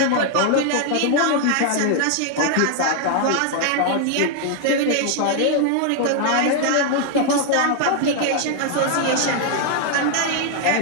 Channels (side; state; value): both; different; correlation 0.00